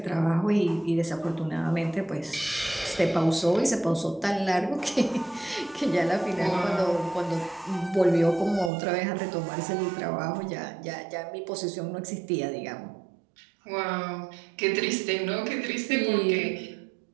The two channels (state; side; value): drops out; left; at 8.7 s